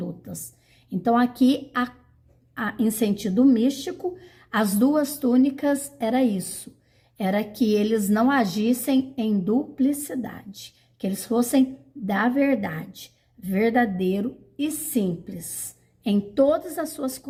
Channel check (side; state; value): both; identical; correlation 1.00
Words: Então, aqui, em sentido místico, as 2 túnicas era isso, era que eles não agissem em duplicidade, que eles fossem da verdade, verdadeiro e simples em todas as suas